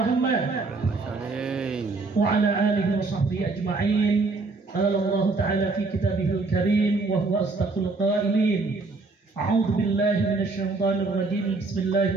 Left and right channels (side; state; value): left; quieter; 3.7 dB